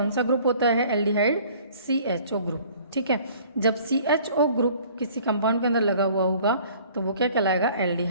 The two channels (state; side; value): inverted; both; correlation -0.53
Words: सा ग्रुप होता है एल्डिहाइड, CHO ग्रुप, ठीक है। जब CHO ग्रुप किसी कंपाउंड के अंदर लगा हुआ होगा तो वो क्या कहलाएगा